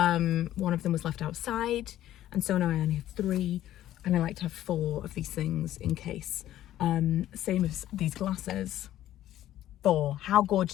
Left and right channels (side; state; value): right; quieter; 13.1 dB